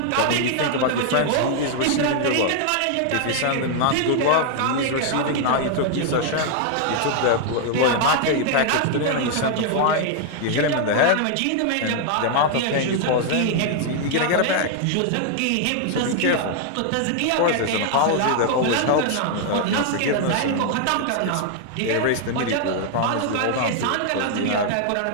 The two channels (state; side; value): different; both; correlation 0.00